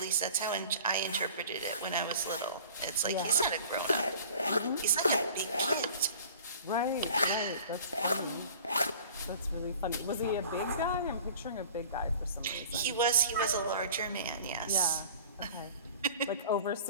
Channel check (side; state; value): both; inverted; correlation -0.45